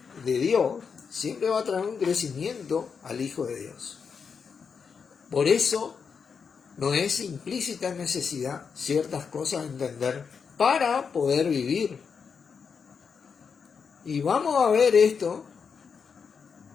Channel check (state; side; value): quieter; right; 6.0 dB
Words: Dios siempre va a traer un crecimiento al Hijo de Dios. Por eso no es implícita necesidad ciertas cosas a entender para poder vivir. Y vamos a ver esto